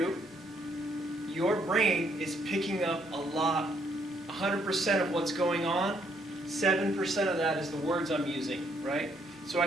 your brain is picking up a lot, 100% of what's going on. 7% of that is the words I'm using, right? So I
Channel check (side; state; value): both; normal; correlation 0.70